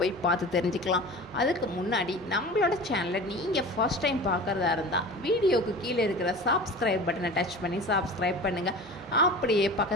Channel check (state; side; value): normal; both; correlation 0.36